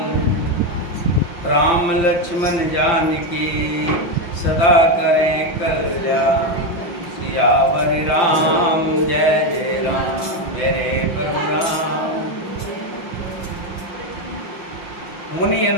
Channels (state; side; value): late; right; 5.8 ms